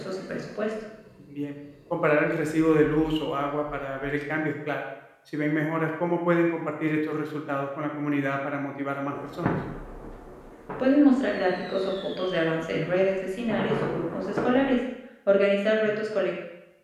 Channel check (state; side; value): identical; both; correlation 1.00